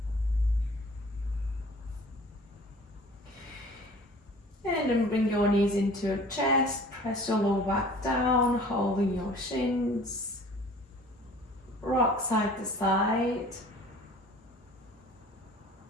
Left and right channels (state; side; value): normal; both; correlation 0.48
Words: And then bring your knees into your chest. Press your lower back down, holding your shins. Rock side to side.